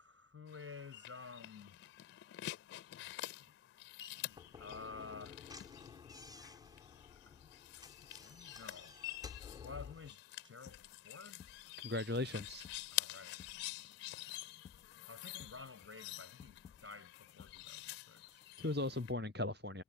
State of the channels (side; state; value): right; quieter; 5.1 dB